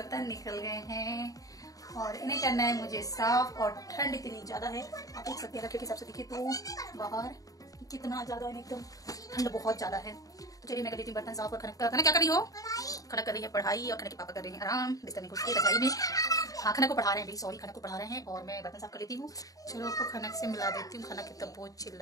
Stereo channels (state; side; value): late; right; 0.17 ms